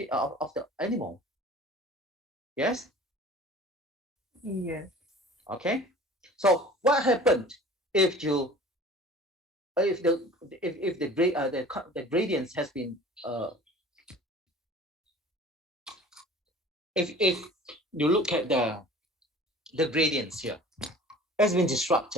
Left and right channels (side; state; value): both; normal; correlation 0.44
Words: animal. Yes? Yes. Okay. So what happened if you if the gradients has been if you look at the gradients here has been